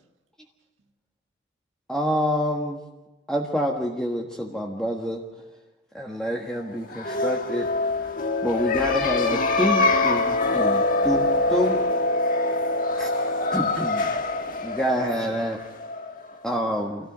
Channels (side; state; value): both; normal; correlation 0.06